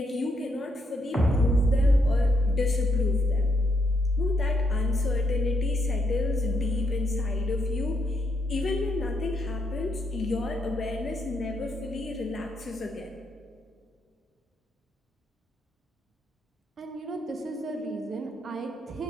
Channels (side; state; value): both; normal; correlation 0.77